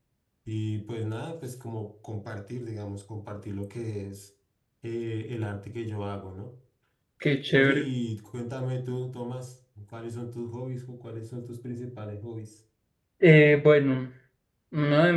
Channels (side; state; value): both; identical; correlation 1.00